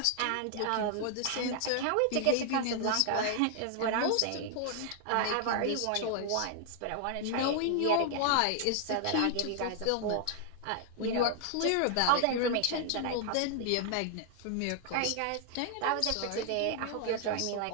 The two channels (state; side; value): different; both; correlation 0.00